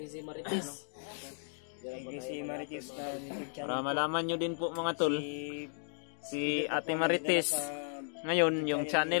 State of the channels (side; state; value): right; silent; digital silence